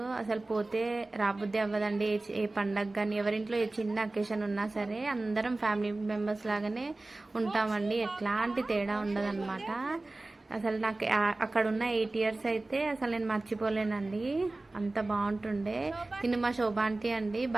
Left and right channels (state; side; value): quieter; left; 3.0 dB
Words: అసలు పోతే రాబుద్ది అవ్వదండి. ఏ పండగ కానీ ఎవరింట్లో ఏ చిన్న అకేషన్ ఉన్నా సరే అందరం ఫ్యామిలీ మెంబర్స్ లాగానే ఉంటామండి. ఎట్లాంటి తేడా ఉండదన్నమాట. అసలు నాకు అక్కడ ఉన్న 8 ఇయర్స్ అయితే అసలు నేను మర్చిపోలేనండి, అంత బాగుంటుండే. తిను మా శోభ ఆంటీ అండి,